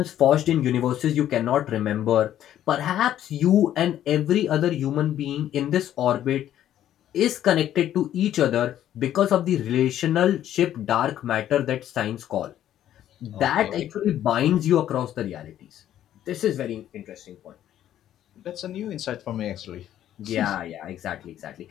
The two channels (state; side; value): quieter; right; 11.6 dB